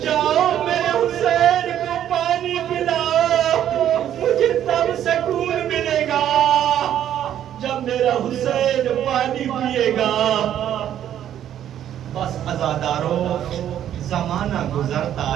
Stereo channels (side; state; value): left; quieter; 10.7 dB